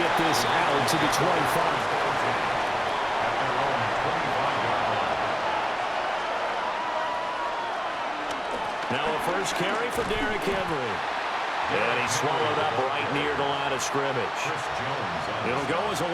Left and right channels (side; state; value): both; identical; correlation 1.00